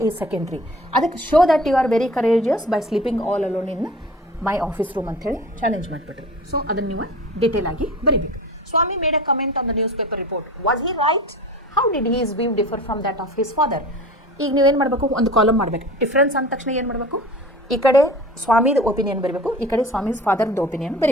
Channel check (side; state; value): both; normal; correlation 0.39